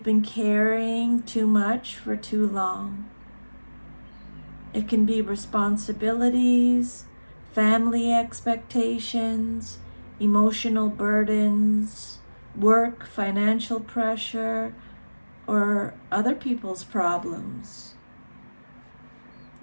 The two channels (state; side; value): inverted; both; correlation -1.00